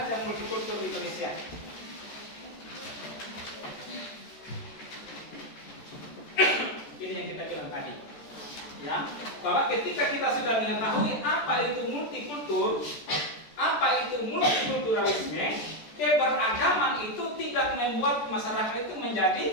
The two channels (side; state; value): right; late; 14 ms